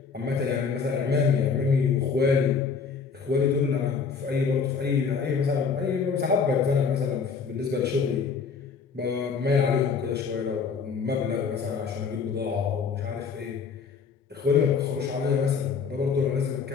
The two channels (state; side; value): quieter; right; 5.6 dB